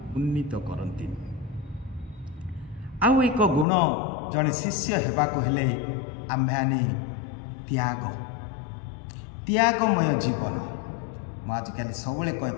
ଉନ୍ନୀତ କରନ୍ତି। ଆଉ ଏକ ଗୁଣ ଜଣେ ଶିଷ୍ୟ ହେବାକୁ ହେଲେ ଆମ୍ଭେମାନେ ତ୍ୟାଗମୟ ଜୀବନ। ମୁଁ ଆଜିକାଲି ସବୁବେଳେ କହେ,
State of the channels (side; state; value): right; drops out; at 3.7 s